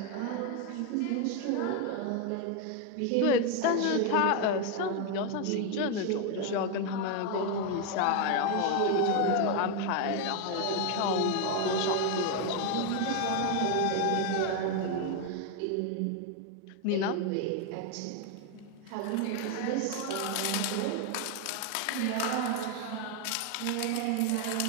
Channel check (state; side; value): different; both; correlation 0.01